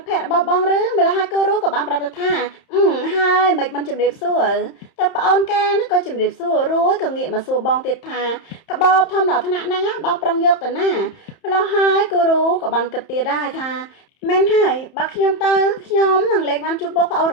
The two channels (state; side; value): late; right; 31 ms